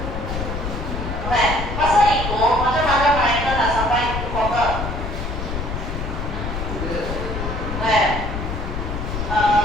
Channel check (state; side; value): noise; left; rumble, 4 dB below the sound